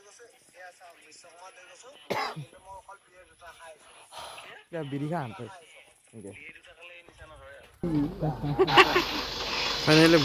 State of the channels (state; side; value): identical; both; correlation 1.00